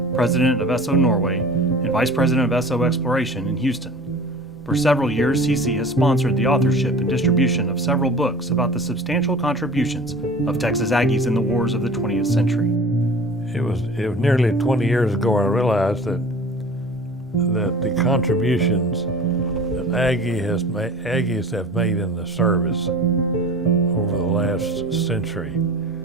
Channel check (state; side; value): normal; both; correlation 0.41